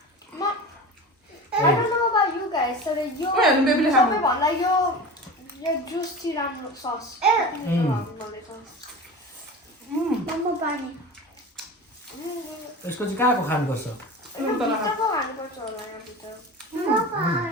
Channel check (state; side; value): normal; both; correlation 0.32